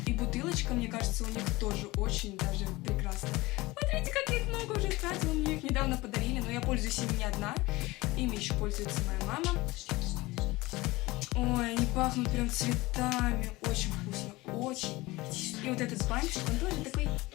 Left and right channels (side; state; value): right; quieter; 20.8 dB